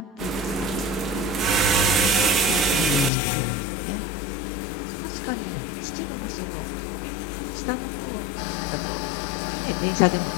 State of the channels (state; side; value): drops out; right; at 3.1 s